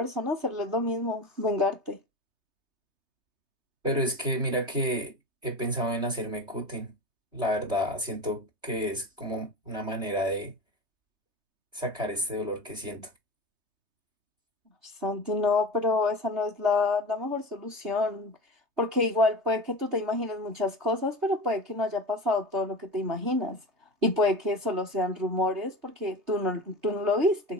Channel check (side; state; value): left; late; 3.2 ms